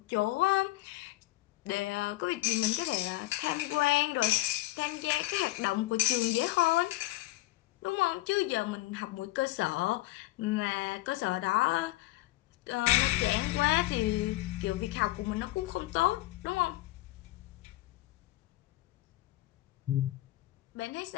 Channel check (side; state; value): right; quieter; 18.0 dB